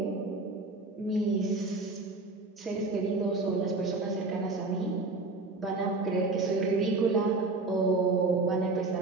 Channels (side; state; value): left; quieter; 3.4 dB